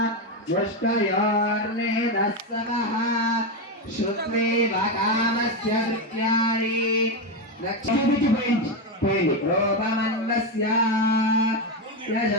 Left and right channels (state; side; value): normal; both; correlation 0.10